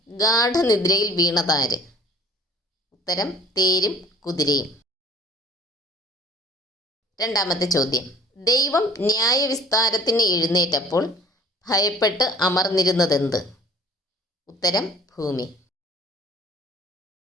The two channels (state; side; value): normal; both; correlation 0.53